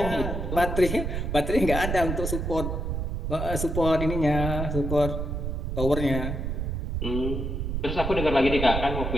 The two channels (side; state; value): right; noise; rumble, 2 dB below the sound